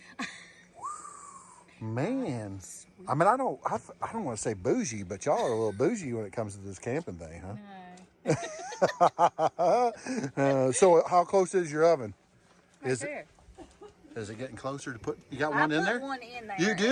Man, I mean, I don't want to say bougie, but y'all are a little bougie when it comes to this camping thing, huh? No. So how close is your oven? Right there. Is it getting closer to put? You got I one in put there? one in there. You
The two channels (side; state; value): both; identical; correlation 1.00